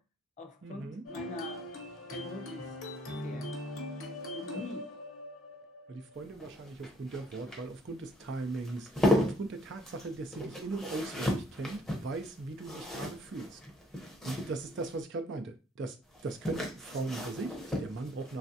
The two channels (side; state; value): both; normal; correlation 0.63